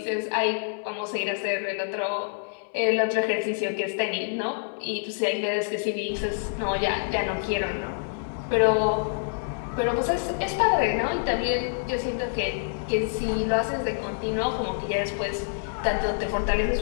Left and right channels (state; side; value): silent; right; 60 dB below the other